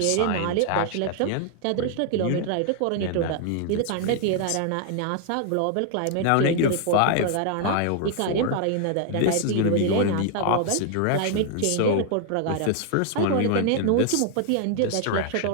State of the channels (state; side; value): different; both; correlation 0.00